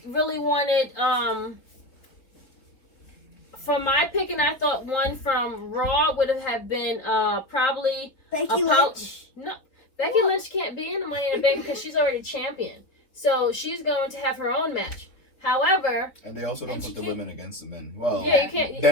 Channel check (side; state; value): right; late; 4.0 ms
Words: really wanted for my pick, and I thought one from Raw would have been probably Becky Apollo- Lynch. No, Becky Lynch can't be in the Money in the Bank because she's already champion. So she's going to have her own match. However, And they also don't And put she the can't- women against the men. Well, yeah, you can't.